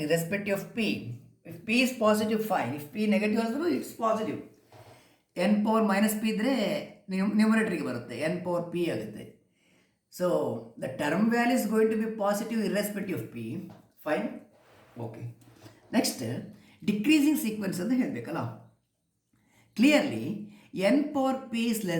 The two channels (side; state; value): both; identical; correlation 1.00